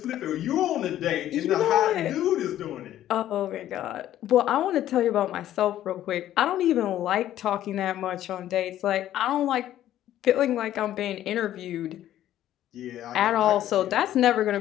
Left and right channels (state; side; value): quieter; right; 12.5 dB